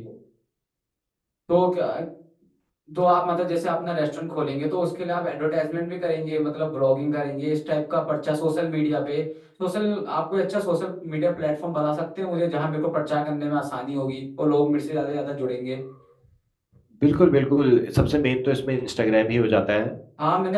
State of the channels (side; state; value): both; identical; correlation 1.00